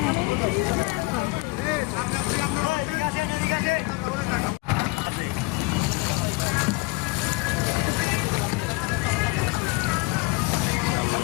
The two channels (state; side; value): quieter; right; 23.8 dB